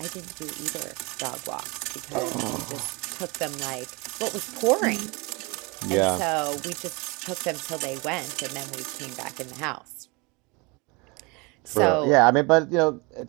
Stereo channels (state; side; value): quieter; left; 27.9 dB